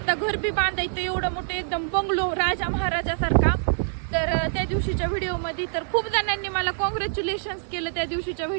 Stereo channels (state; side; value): silent; left; digital silence